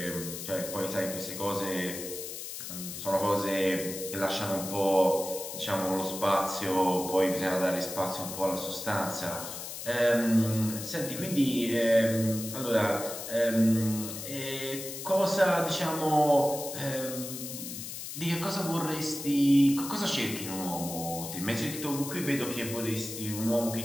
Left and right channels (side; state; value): left; noise; hiss, 8 dB below the sound